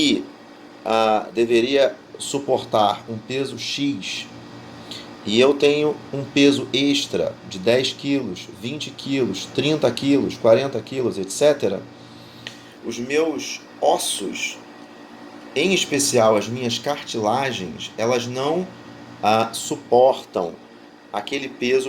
deveria suportar um peso X, e eu tenho um peso extra de 10 quilos, 20 quilos, 30 quilos, 40 quilos, etc., os meus ossos, em especial as minhas cartilagens, elas não suportam aquele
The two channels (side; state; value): both; identical; correlation 1.00